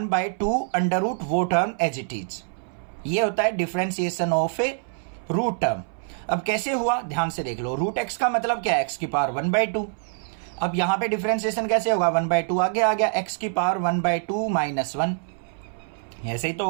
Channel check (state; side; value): silent; left; 60 dB below the other